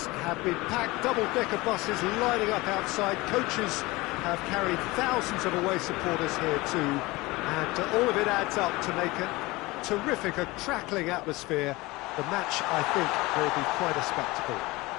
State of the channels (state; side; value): quieter; right; 21.7 dB